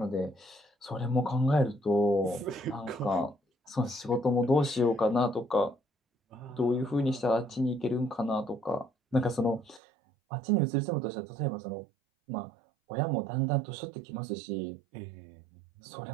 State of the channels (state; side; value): drops out; left; at 9.8 s